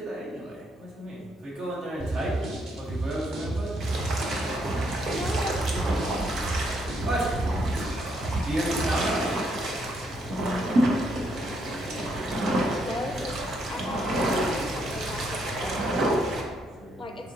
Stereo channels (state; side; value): normal; both; correlation 0.74